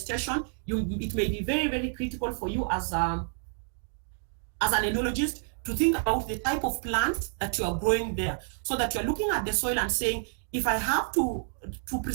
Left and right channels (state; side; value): silent; left; 58 dB below the other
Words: it may be very, very critical for you as an enologist to think about the type of plants that you are growing there, so that you're looking at the soil and saying, if I have to